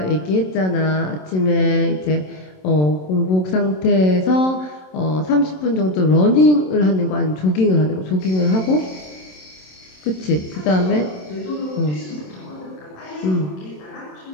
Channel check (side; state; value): right; late; 27 ms